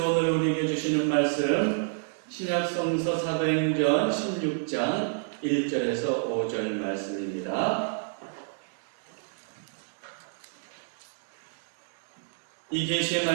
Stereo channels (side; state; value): left; silent; digital silence